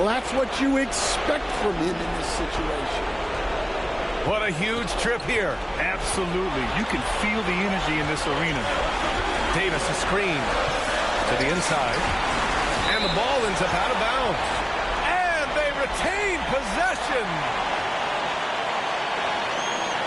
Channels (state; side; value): identical; both; correlation 1.00